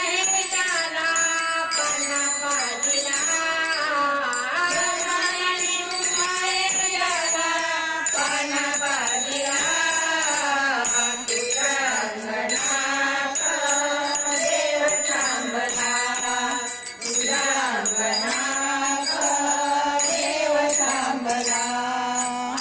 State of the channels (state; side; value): identical; both; correlation 1.00